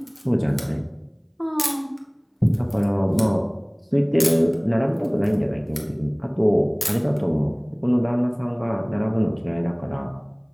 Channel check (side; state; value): both; identical; correlation 1.00